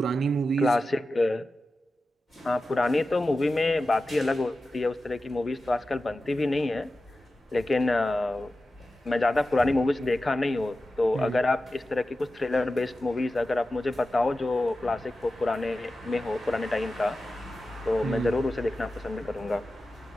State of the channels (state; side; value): normal; both; correlation 0.94